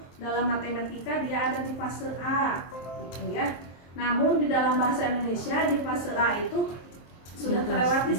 dalam matematika dia ada di fase A, gitu ya. Namun di dalam bahasa Indonesia di fase A itu sudah terlewati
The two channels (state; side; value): late; right; 23 ms